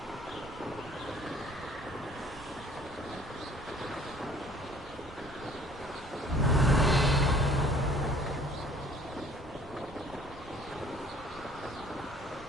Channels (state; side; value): normal; both; correlation 0.55